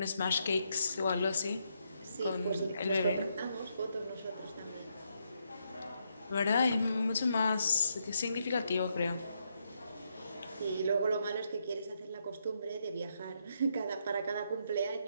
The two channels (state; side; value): inverted; both; correlation -0.78